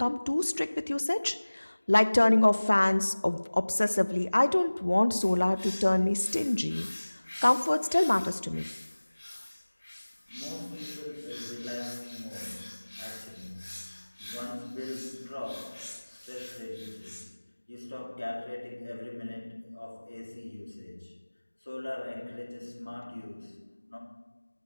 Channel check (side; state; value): both; inverted; correlation -1.00